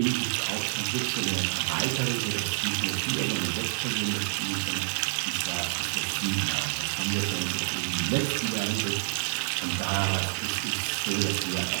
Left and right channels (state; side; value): silent; left; 59 dB below the other